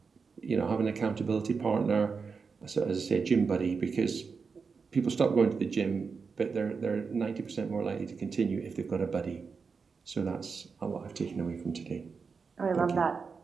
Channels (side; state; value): left; quieter; 5.2 dB